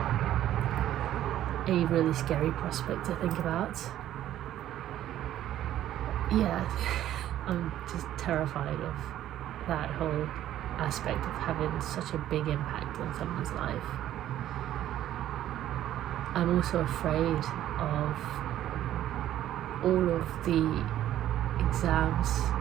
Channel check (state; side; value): quieter; left; 12.4 dB